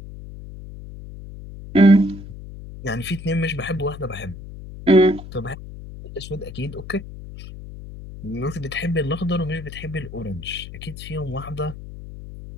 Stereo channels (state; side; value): noise; left; hum, 13 dB below the sound